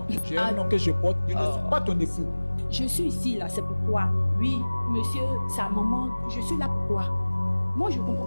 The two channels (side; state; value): both; inverted; correlation -1.00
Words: J'ai un nom que je porte. Je ne suis pas ton époux. Je suis ici, là, c'est pourquoi. Oui, monsieur, sa maman, je suis là pourquoi. Moi, je ne comprends